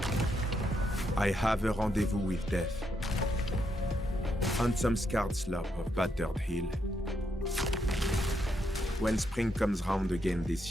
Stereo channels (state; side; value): normal; both; correlation 0.79